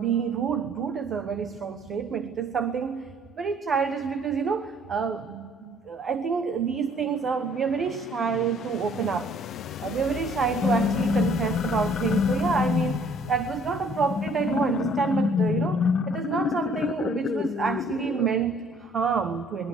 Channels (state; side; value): normal; both; correlation 0.59